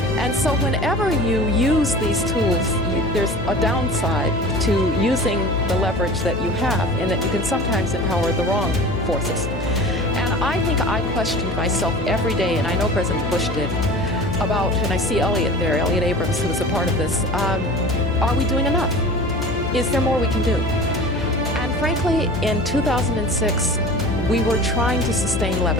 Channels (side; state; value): left; noise; hum, 6 dB below the sound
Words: And so whenever you use these tools, there's a downside to using the leverage that you have, in that you can sometimes empower the wrong forces. And I think I questioned myself every day, and I know President Bush did, about, and I see Elliot there, Elliot Abrams, who was a part of this, are we doing enough? Is there more we can do? And frankly, in 2006, we were trying to sustain